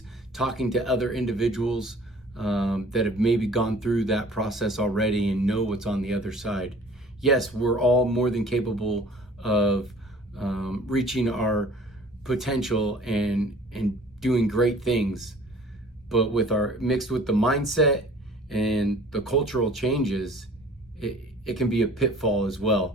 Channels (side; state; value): both; normal; correlation 0.49